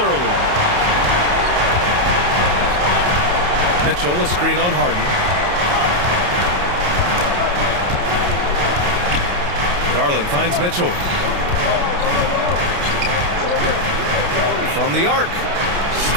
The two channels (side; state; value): left; late; 28 ms